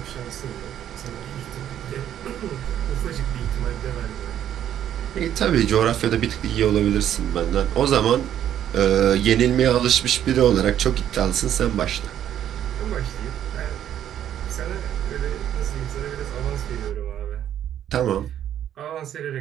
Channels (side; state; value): left; quieter; 10.6 dB